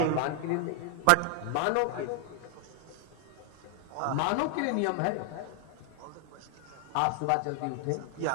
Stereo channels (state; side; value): different; both; correlation 0.00